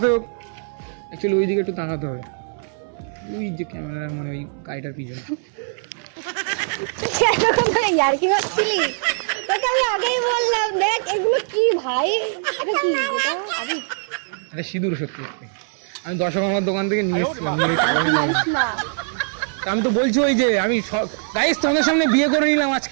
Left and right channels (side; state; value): left; silent; digital silence